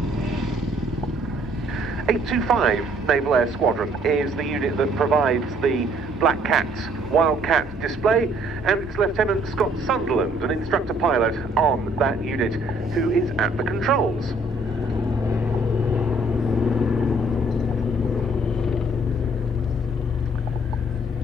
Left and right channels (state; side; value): normal; both; correlation 0.62